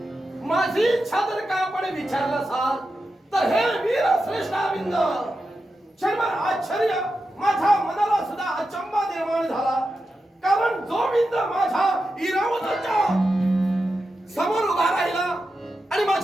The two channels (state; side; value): normal; both; correlation 0.89